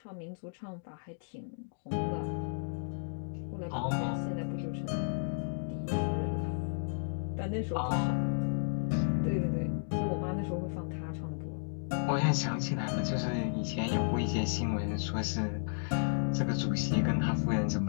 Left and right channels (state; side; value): silent; right; digital silence